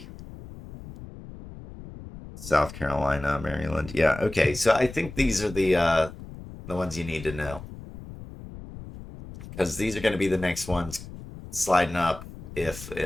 South Carolina, Maryland. Yeah, okay. So I think these are the ones you need to know because these are going to be the next ones sliding up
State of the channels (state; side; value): noise; left; rumble, 14 dB below the sound